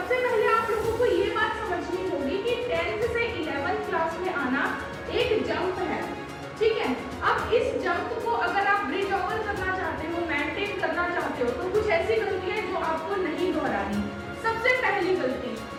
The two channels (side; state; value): both; identical; correlation 1.00